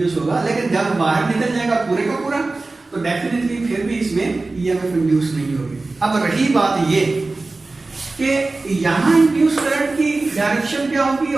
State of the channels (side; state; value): left; quieter; 3.4 dB